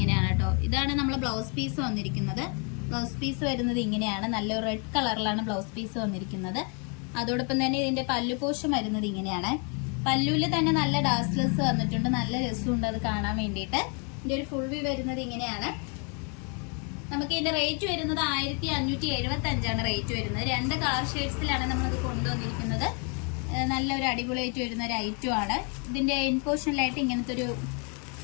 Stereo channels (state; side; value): quieter; right; 36.8 dB